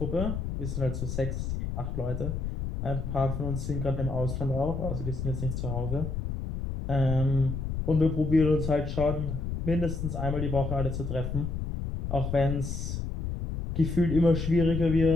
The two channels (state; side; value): noise; left; rumble, 4 dB below the sound